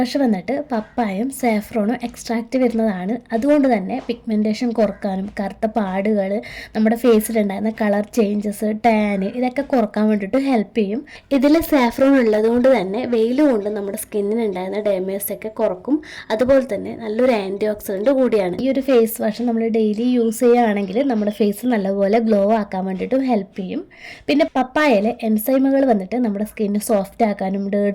വന്നിട്ട് പപ്പായും സാഫ്രോണും എക്സ്ട്രാക്റ്റ് വരുന്നതാണ്. അതുകൊണ്ട് തന്നെ പിഗ്മെൻറ്റേഷൻ കുറക്കാനും കറുത്ത പാടുകൾ, നമ്മുടെ ഫേസിലുണ്ടായിരുന്ന കളർ ചേഞ്ചസ്, ടാന് ഇതൊക്കെ കുറക്കാൻ വേണ്ടിയിട്ട് ഹെൽപ്പ് ചെയ്യും. ഇതിൽ സാഫ്രോൺ ഉള്ളത് കൊണ്ട് തന്നെ വെയിൽ കൊണ്ട് നമ്മുടെ സ്കിന്നിനുണ്ടായിരുന്ന ഡാമേജ് ഒക്കെ കുറക്കും. അതുപോലെ തന്നെ നല്ലൊരു ആൻറ്റി ഓക്സിഡൻറ്റ് കൂടിയാണ്. ഈ ഒരു ഫേസ് വാഷ് നമ്മൾ ഡെയിലി യൂസ് ചെയ്യുകയാണെങ്കിൽ നമ്മുടെ ഫേസ് നല്ലപോലെ ഗ്ലോ ആക്കാൻ വേണ്ടിയിട്ടും ഹെൽപ്പ് ചെയ്യും. പിന്നെ പപ്പായയിലെ എൻസൈമുകൾ വന്നിട്ട് നമ്മുടെ സ്കിന്ന് സോഫ്റ്റ് ആക്കാനും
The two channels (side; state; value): both; identical; correlation 1.00